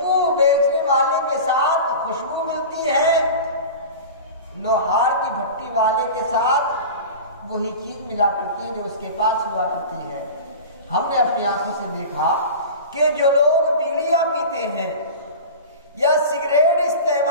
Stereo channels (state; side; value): inverted; both; correlation -0.32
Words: بیچنے والے کے ساتھ خوشبو ملتی ہے، لوہار کی بھٹی والے کے ساتھ وہی چیز ملا کرتی ہے جو اس کے پاس ہوا کرتی ہے۔ ہم نے اپنی آنکھوں سے دیکھا کہ جو لوگ بیڑیاں پیتے ہیں یا سگریٹ